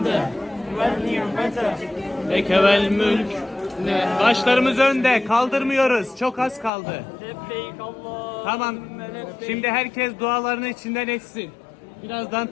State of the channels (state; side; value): drops out; right; at 6.7 s